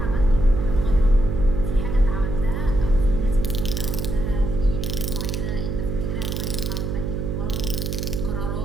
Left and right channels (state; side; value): noise; right; hum, 2 dB below the sound